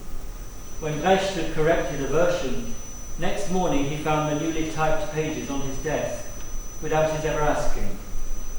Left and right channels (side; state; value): both; identical; correlation 1.00